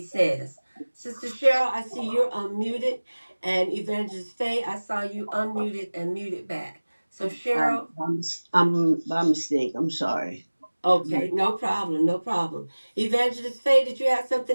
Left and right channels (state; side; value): inverted; both; correlation -1.00